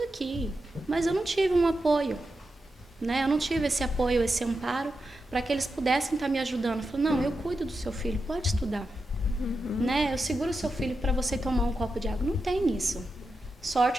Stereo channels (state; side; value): normal; both; correlation 0.89